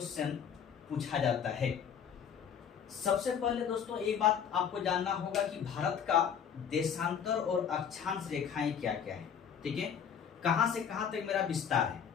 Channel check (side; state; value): right; quieter; 7.8 dB